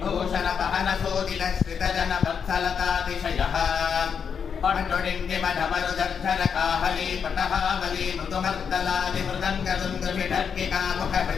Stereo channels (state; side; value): quieter; right; 6.9 dB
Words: पहन सोदित श्रित जन वत्सलतातिशयः पटुडिण्डिमढमरुदर्धर काहली पटहावली मृदुमर्दलादि मृदङ्गदुन्दुभिढर्किका